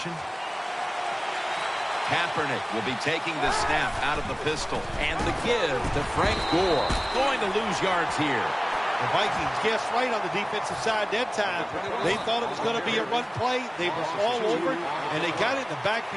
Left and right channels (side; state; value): both; identical; correlation 1.00